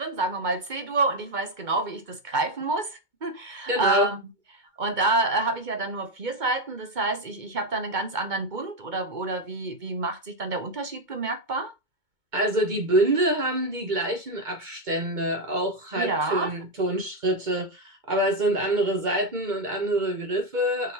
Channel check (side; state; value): left; late; 2.2 ms